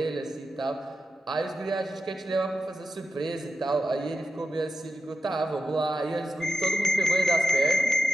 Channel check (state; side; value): normal; both; correlation 0.91